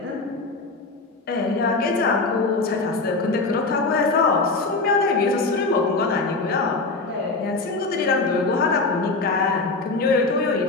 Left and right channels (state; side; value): quieter; right; 3.6 dB